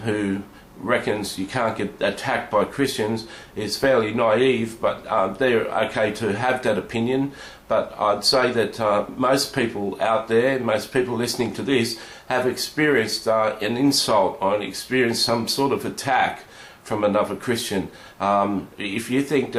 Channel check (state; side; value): identical; both; correlation 1.00